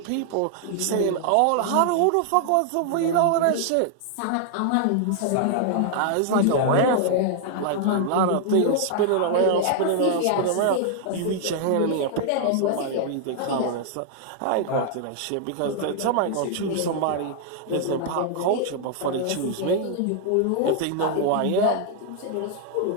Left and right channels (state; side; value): different; both; correlation 0.00